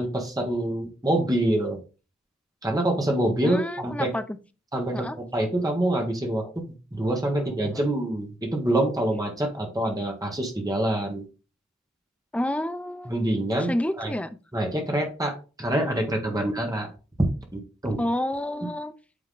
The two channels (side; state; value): both; normal; correlation 0.78